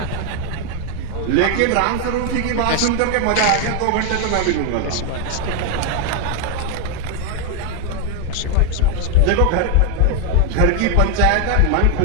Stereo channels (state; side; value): different; both; correlation 0.01